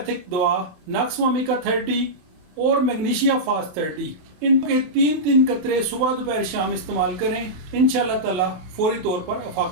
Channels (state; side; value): late; left; 27 ms